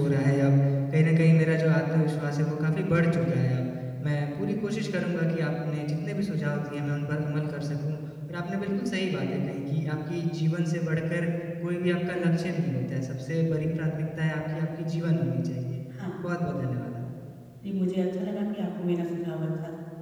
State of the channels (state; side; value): identical; both; correlation 1.00